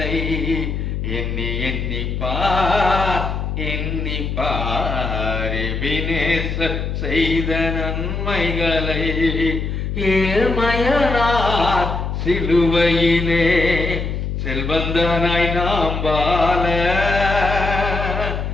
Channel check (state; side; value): noise; left; hum, 3 dB below the sound